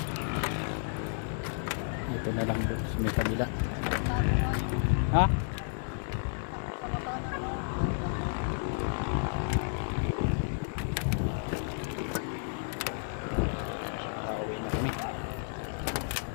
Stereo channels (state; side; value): silent; right; digital silence